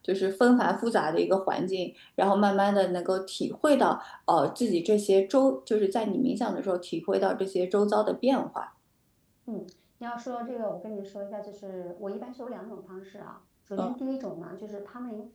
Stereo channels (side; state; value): both; identical; correlation 1.00